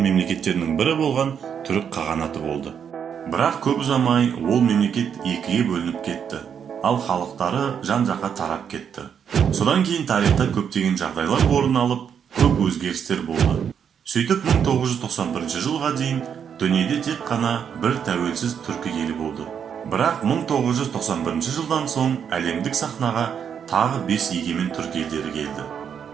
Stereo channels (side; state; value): left; quieter; 7.8 dB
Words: мемлекеттерінің бірі болған түрік қағанаты болды. Бірақ көп ұзамай ол мемлекет екіге бөлініп кетті, ал халықтары жан-жаққа тарап кетті. Содан кейін тарихта көптеген жағдайлар орын алып, көп өзгерістер болды. Сөйтіп 1991 жылға дейін дүниеде тек қана бір тәуелсіз түркі елі болды. Бірақ 1991 жылдан соң әлемдік сахнаға тағы 5 егемен түркі елдері келді.